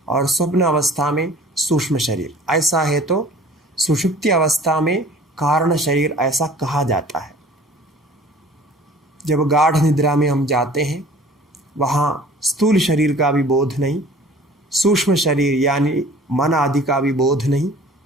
और स्वप्न अवस्था में सूक्ष्म शरीर। ऐसा है तो सुषुप्ति अवस्था में कारण शरीर ऐसा कहा जाता है। जब गाढ़ निद्रा में हम जाते हैं वहाँ स्थूल शरीर का भी बोध नहीं, सूक्ष्म शरीर यानी मन आदि का भी बोध नहीं,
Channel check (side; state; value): both; normal; correlation 0.48